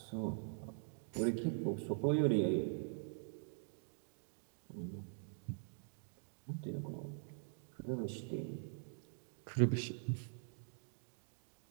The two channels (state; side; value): silent; left; digital silence